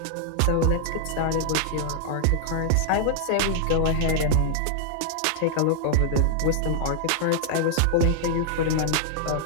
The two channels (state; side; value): different; both; correlation -0.01